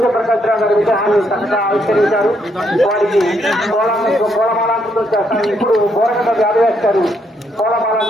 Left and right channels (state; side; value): normal; both; correlation 0.74